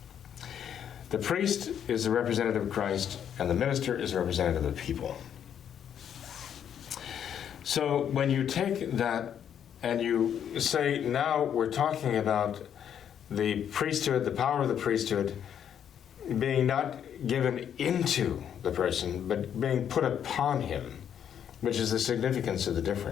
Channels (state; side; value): quieter; right; 9.0 dB